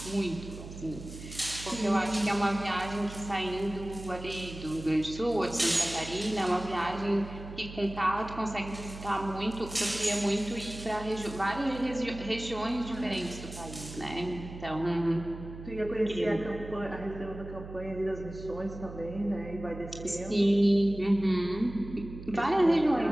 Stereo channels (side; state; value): right; noise; hum, 12 dB below the sound